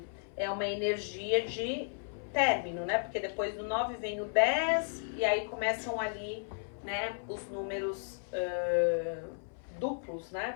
é uma energia de término, né? Porque depois do 9 vem o 10 e aí começam ali, né, os números duplos, né?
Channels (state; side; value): silent; right; 55 dB below the other